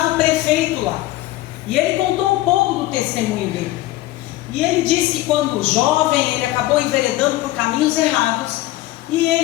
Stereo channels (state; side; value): quieter; right; 16.9 dB